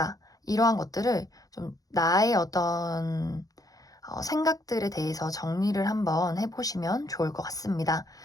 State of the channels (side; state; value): right; late; 0.17 ms